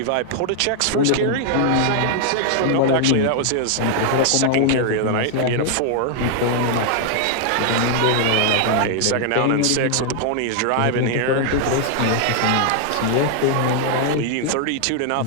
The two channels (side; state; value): both; different; correlation 0.00